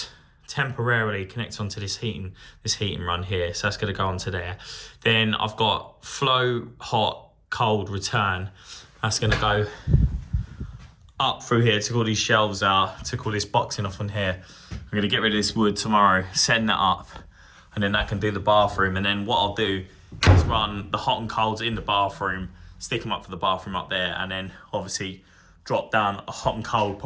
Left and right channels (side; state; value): both; identical; correlation 1.00